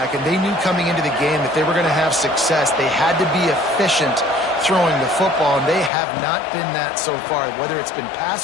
and they knew coming into the game that they were going to have success. They had to be efficient throwing the football, and they have not been that so far. Whether it's been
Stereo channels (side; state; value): right; drops out; at 5.9 s